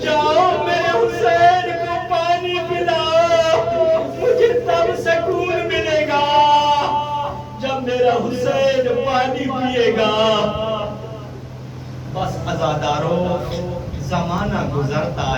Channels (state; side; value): identical; both; correlation 1.00